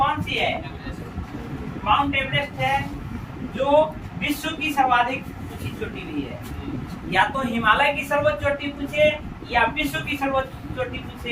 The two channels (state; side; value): identical; both; correlation 1.00